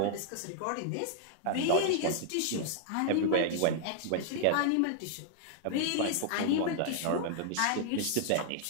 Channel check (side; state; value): both; different; correlation -0.01